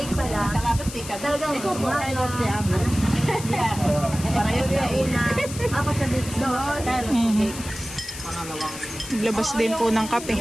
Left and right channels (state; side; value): noise; left; hiss, 11 dB below the sound